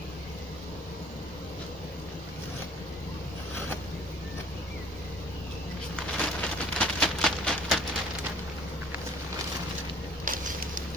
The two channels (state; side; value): normal; both; correlation 0.54